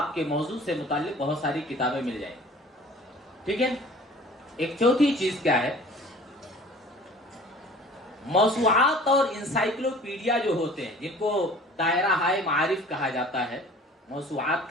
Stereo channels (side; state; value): both; normal; correlation 0.47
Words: کے موضوع سے متعلق بہت ساری کتابیں مل جائیں، ٹھیک ہے۔ ایک چوتھی چیز کیا ہے، موسوعات اور انسائکلوپیڈیا جو ہوتے ہیں، جن کو دائرہ ہائے معارف کہا جاتا ہے، موسوعات